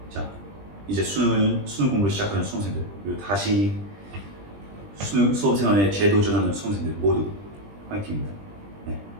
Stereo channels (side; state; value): left; late; 20 ms